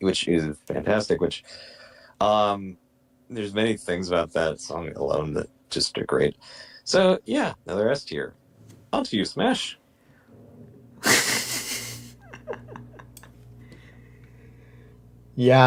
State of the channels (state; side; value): identical; both; correlation 1.00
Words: fantastic. Which there's many things about that song alone that just are great. So yeah, another S tier. On to you, Smash.